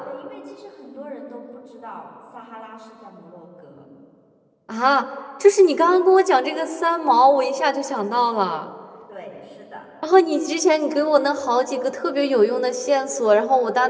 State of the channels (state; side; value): identical; both; correlation 1.00